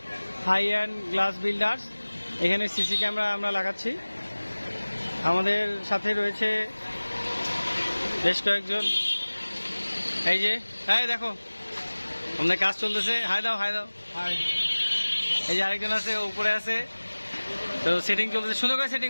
হাই অ্যান্ড গ্লাস বিল্ডার্স। এখানে সিসি ক্যামেরা আমরা লাগাচ্ছি। আমাদের সাথে রয়েছে বেশ কয়েকজন। এই যে দেখো আমাদের কাজ চলতেছে। হাই দাও হাই। এই যে আরেকজন আছে, উপরে আছে, তো সেটিং চলতেছে। সুন্দর করে সেটিং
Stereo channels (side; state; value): both; inverted; correlation -1.00